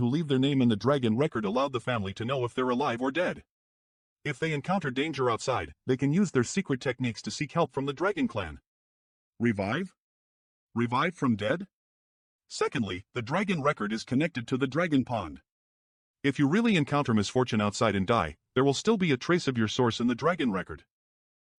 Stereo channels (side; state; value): both; identical; correlation 1.00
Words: leave their name in the dragon record allowed the family to know if they're alive or dead. If they encounter danger outside, they can use their secret techniques to seek help from the dragon clan. Revive? Revive from dead? Secondly, the dragon record is connected to the dragon pond. If you really encounter misfortune outside and die, there will still be a trace of your source in the dragon record.